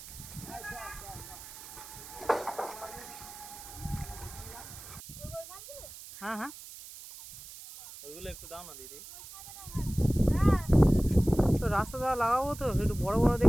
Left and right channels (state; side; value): noise; right; hiss, 15 dB below the sound